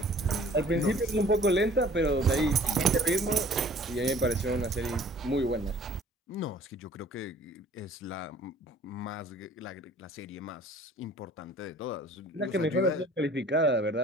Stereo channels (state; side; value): normal; both; correlation 0.52